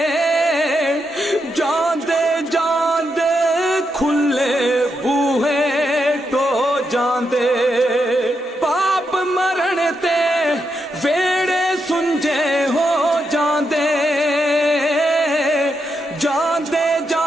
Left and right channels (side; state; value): both; normal; correlation 0.83